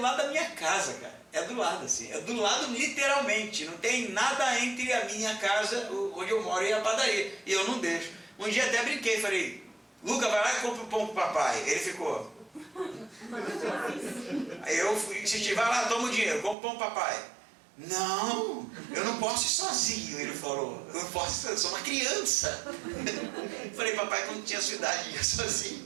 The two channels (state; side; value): drops out; left; at 16.6 s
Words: lado da minha casa, cara. É do lado, assim. É do lado literalmente. Não tem nada entre a minha casa, onde eu moro, e a padaria. E eu não deixo. Um dia até brinquei, falei, Luca, vai lá e compra o pão pro papai. Ele ficou. Aí eu insisti, vai lá, toma o dinheiro, compra o pão pro papai. Não, eu não posso ir sozinho, ele falou. Eu não posso, eu sou uma criança. Falei, papai, quando tinha sua idade, ia